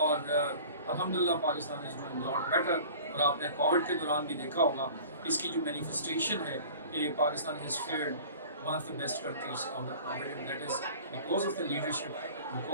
الحمدللہ Pakistan is doing lot better. اور آپ نے کووڈ کے دوران بھی دیکھا ہوگا اس کی جو مینیفیسٹیشن ہے کہ Pakistan has feared one of the best countries out of poverty, and that is because of the leadership,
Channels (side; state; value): both; inverted; correlation -0.43